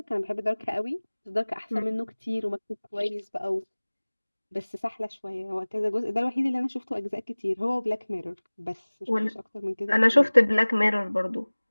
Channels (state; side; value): inverted; both; correlation -1.00